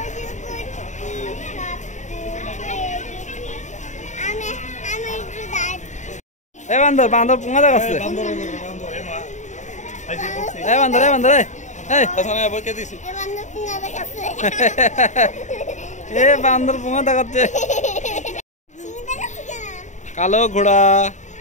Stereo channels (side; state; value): right; late; 0.35 ms